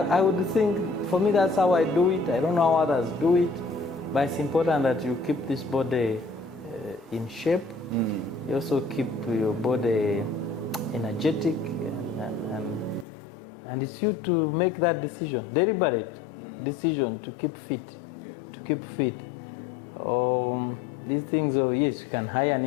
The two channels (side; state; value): right; drops out; at 13.1 s